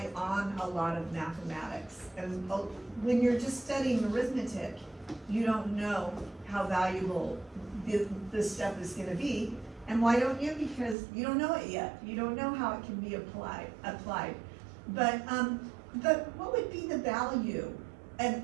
on a lot of mathematics. And when you're just studying arithmetic, you don't know how valuable this stuff is gonna be. And why don't you? Because you don't know it yet. You don't know how it can be applied. But what would be the value?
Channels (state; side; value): drops out; left; at 11.0 s